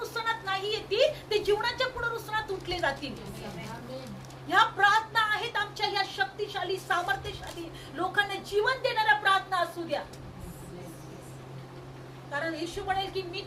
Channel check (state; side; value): identical; both; correlation 1.00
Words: नाही येतील, ते जीवनाच्या पुनरुत्थानात उठले जातील. ह्या प्रार्थना आहेत आमच्या, ह्या शक्तिशाली, सामर्थ्यशाली, लोकांना जीवन देणाऱ्या प्रार्थना असू द्या. कारण येशू म्हणेल की मी